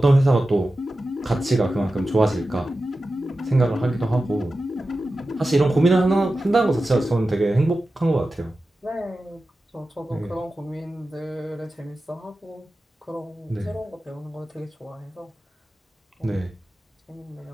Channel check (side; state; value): both; normal; correlation 0.93